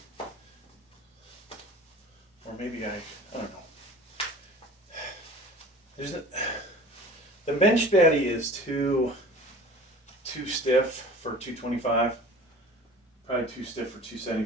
Or maybe I don't know. The Bench Daddy is too stiff for 225. Probably too stiff for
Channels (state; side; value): normal; both; correlation 0.42